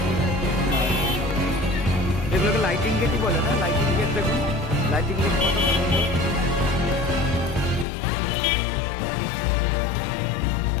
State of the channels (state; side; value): drops out; right; at 7.9 s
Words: এগুলোকে লাইটিং গেটই বলে না? লাইটিং গেট দেখুন, লাইটিং গেট কত সুন্দর।